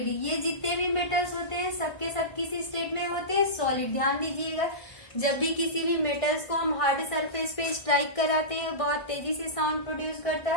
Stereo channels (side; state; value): right; late; 1.5 ms